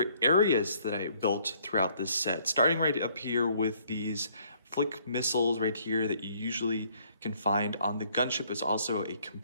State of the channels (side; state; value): both; inverted; correlation -0.64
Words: areas that I built throughout this set. Starting right up here with these flick missiles right here that you usually can find on the gunship. Is also a